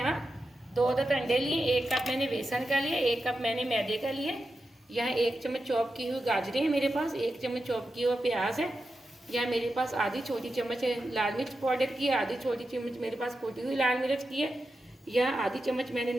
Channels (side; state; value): both; normal; correlation 0.90